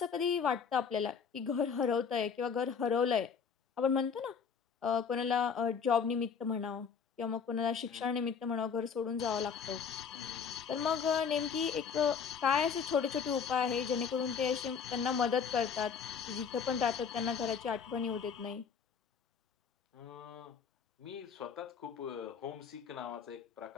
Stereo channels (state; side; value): quieter; right; 6.5 dB